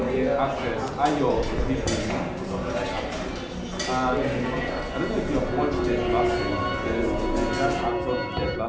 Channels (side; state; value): both; identical; correlation 1.00